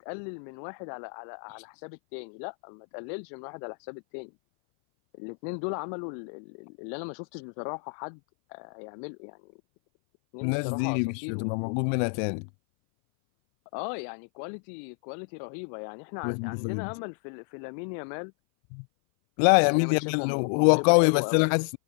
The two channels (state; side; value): silent; right; 57 dB below the other